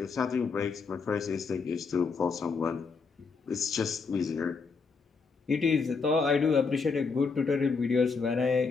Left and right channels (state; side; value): quieter; right; 4.8 dB